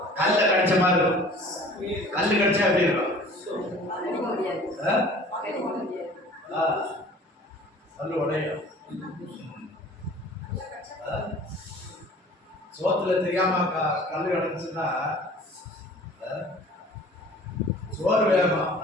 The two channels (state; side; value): normal; both; correlation 0.47